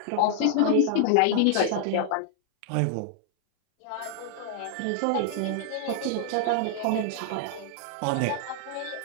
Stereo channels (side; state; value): both; different; correlation 0.00